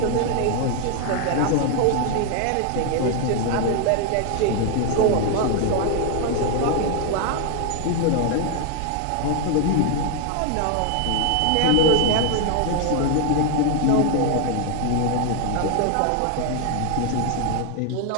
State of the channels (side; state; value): both; different; correlation 0.00